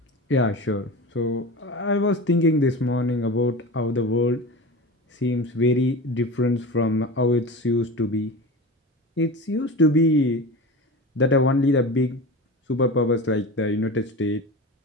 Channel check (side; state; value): both; normal; correlation 0.30